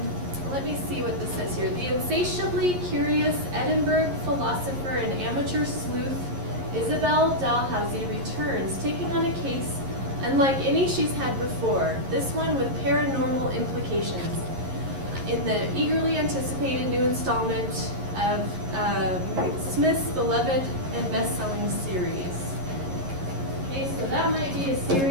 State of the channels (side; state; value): left; late; 11 ms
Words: Let me see what this says here. The insatiably curious Edinburgh philosopher and amateur sleuth Isabel Dalhousie returns, taking on a case unlike any she's had before, this one with paranormal implications, in the eagerly anticipated new installment of Smith's beloved and best-selling series. Okay, so that might be a